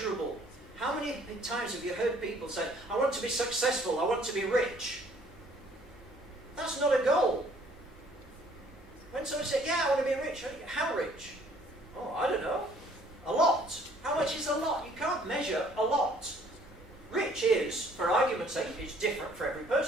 How many times have you heard people say, I want to be successful, I want to be rich? That's not a goal. When someone says, yeah, I want to be rich, how rich? Oh, I don't know. A lot. How much is a lot? You can't measure a lot. Rich is, for argument's sake, it's different for every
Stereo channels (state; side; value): normal; both; correlation 0.60